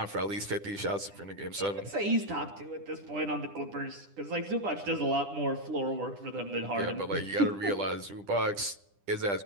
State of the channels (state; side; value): late; left; 10 ms